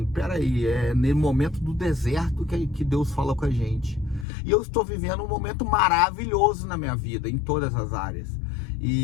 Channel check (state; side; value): drops out; right; at 4.2 s